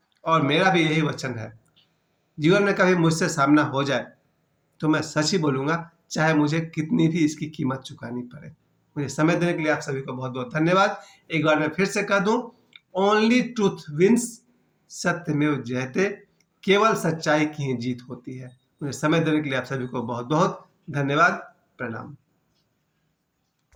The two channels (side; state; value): both; identical; correlation 1.00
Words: और मेरा भी यही वचन है, जीवन में कभी मुझसे सामना हो जाए तो मैं सच ही बोलूंगा, चाहे मुझे कितनी भी इसकी कीमत चुकानी पड़े। मुझे समय देने के लिए आप सभी को बहुत बहुत धन्यवाद। एक बार मैं फिर से कह दूं, ओनली ट्रूथ विंस, सत्यमेव जयते, केवल सच्चाई की ही जीत होती है। मुझे समय देने के लिए आप सभी को बहुत बहुत धन्यवाद। प्रणाम।